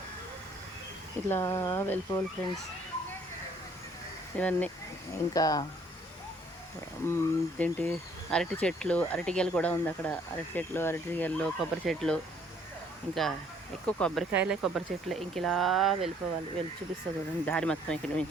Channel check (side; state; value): both; normal; correlation 0.62